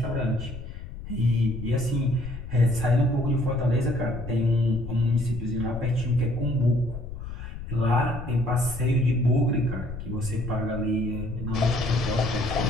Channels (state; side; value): noise; left; rumble, 9 dB below the sound